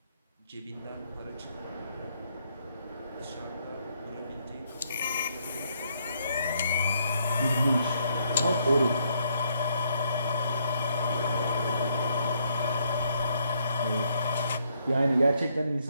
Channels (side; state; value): both; inverted; correlation -0.72